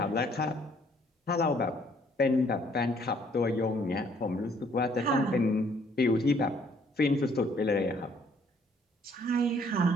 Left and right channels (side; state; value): both; normal; correlation 0.63